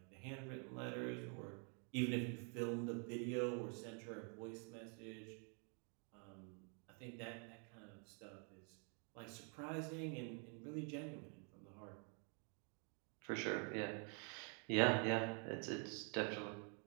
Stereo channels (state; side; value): quieter; left; 39.3 dB